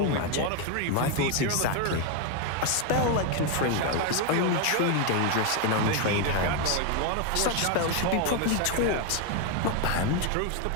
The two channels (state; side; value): different; both; correlation 0.01